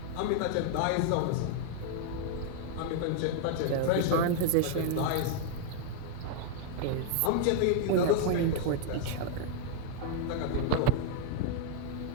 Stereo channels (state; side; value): different; both; correlation 0.00